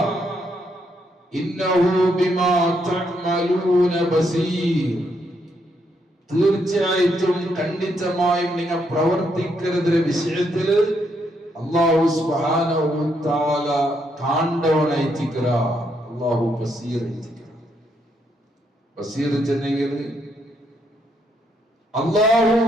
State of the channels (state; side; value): normal; both; correlation 0.76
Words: ഇന്നഹു ബിമാ തഅമലൂന ബസീർ, തീർച്ചയായിട്ടും ഖണ്ഡിതമായും നിങ്ങൾ പ്രവർത്തിക്കുന്ന വിഷയത്തിൽ അല്ലാഹു സുബ്ഹാനഹു വ തആല കാണ്ടവനായിട്ടിക്കറ. അല്ലാഹു ബസീർ ആയിട്ടിക്കറ. ബസീർ ചെന്നെങ്കിൽ അല്ലാഹു